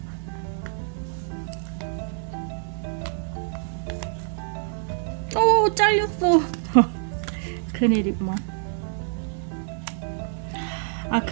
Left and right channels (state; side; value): silent; left; 61 dB below the other